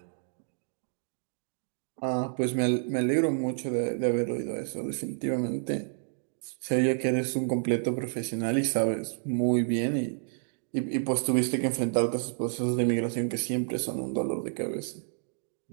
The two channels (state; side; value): silent; left; digital silence